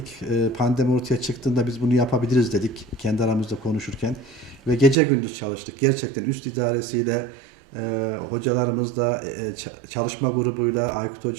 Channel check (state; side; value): drops out; left; at 5.0 s